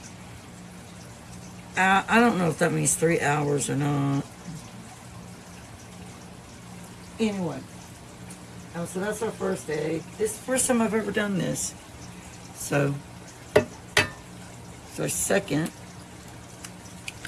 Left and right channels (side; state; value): both; identical; correlation 1.00